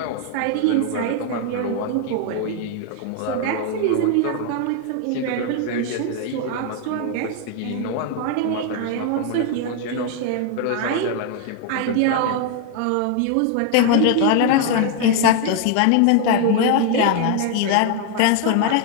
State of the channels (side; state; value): both; different; correlation 0.01